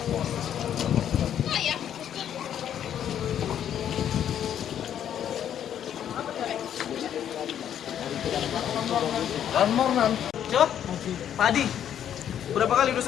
Mornan. Siapa? Pak Adi. Berapa kali? Udah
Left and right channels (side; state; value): right; quieter; 9.8 dB